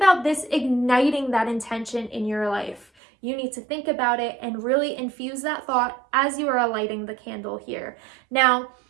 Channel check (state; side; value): drops out; left; at 2.9 s